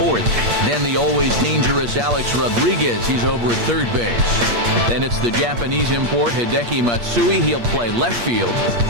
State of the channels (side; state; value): left; late; 8.5 ms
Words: Then the always dangerous Alex Rodriguez. He's over at third base. Then it's the Japanese import, Hideki Matsui. He'll play left field.